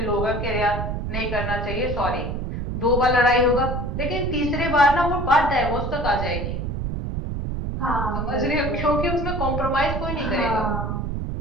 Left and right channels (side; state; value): right; noise; rumble, 3 dB below the sound